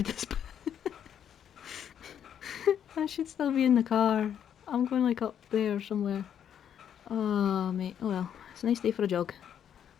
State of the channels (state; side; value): quieter; right; 9.1 dB